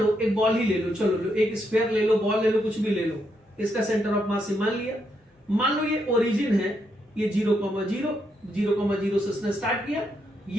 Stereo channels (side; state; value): both; normal; correlation 0.79